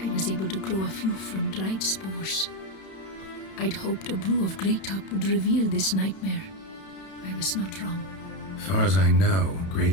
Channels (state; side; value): late; right; 31 ms